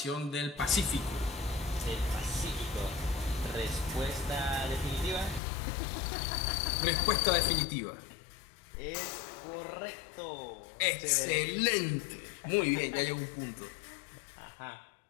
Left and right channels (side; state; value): right; drops out; at 5.4 s